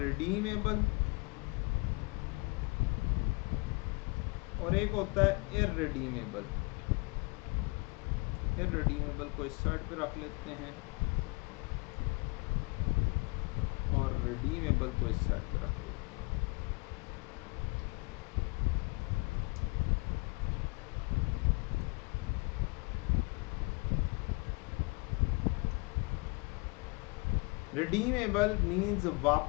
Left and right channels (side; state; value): right; quieter; 28.4 dB